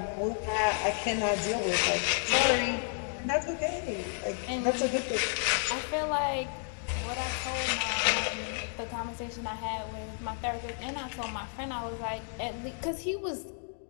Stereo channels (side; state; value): right; silent; 57 dB below the other